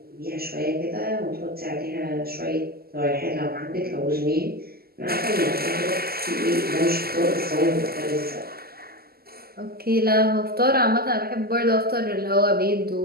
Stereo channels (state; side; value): late; left; 0.45 ms